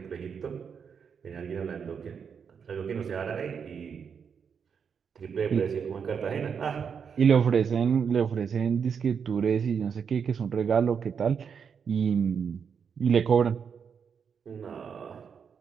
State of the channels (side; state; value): left; quieter; 6.7 dB